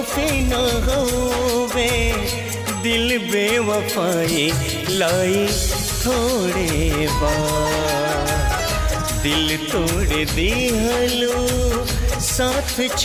न होवे, दिल बेवफाई लाई थोड़े बा। दिल तोड़ दिहलो साथ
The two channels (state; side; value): identical; both; correlation 1.00